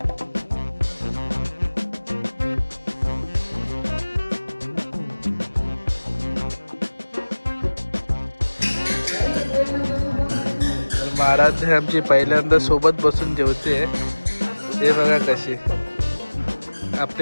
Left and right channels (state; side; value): inverted; both; correlation -1.00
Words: महाराज आमची पहिल्यांदा सोबत बसून जेवते. हे बघा कशी